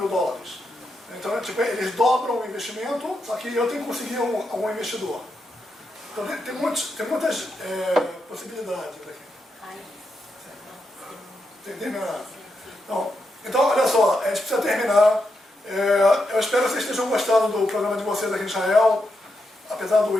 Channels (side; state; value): both; normal; correlation 0.84